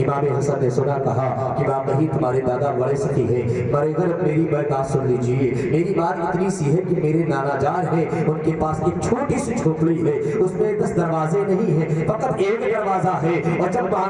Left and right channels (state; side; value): identical; both; correlation 1.00